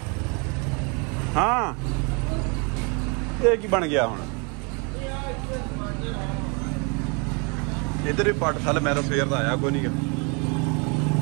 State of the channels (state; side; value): quieter; left; 33.0 dB